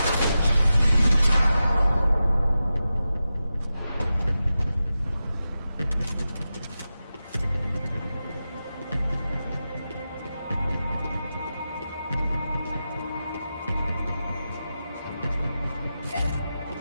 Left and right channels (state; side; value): inverted; both; correlation -0.92